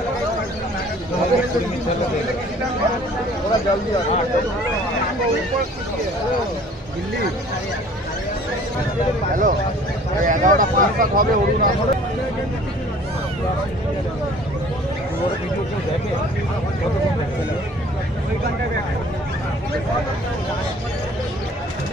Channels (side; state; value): both; normal; correlation 0.51